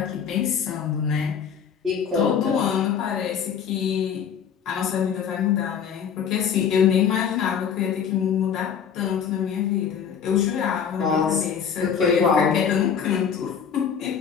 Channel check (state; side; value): quieter; right; 7.5 dB